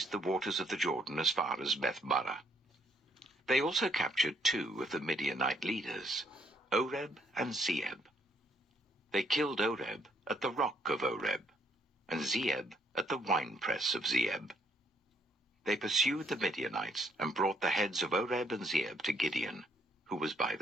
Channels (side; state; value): both; normal; correlation 0.69